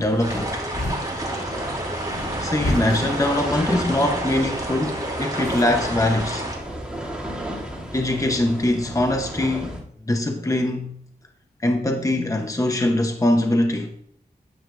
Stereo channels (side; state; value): both; normal; correlation 0.74